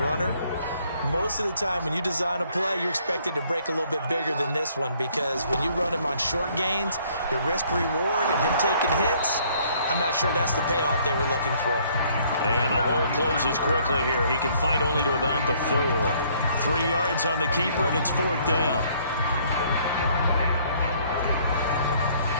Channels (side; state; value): both; inverted; correlation -0.63